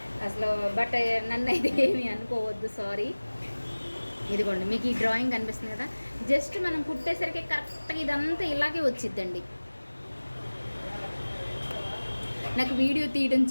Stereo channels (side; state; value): both; inverted; correlation -1.00